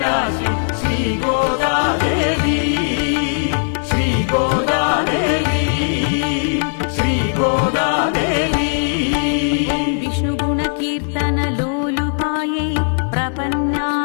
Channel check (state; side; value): silent; right; digital silence